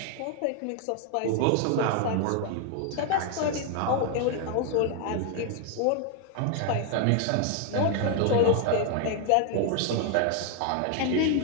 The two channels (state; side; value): different; both; correlation 0.00